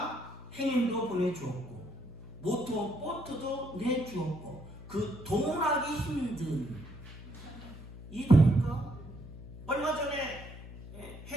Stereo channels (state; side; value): noise; left; hum, 13 dB below the sound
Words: 행인도 보내주었고 모터보트도 내주었고 그 동원하기 힘든 이해됩니까? 얼마 전에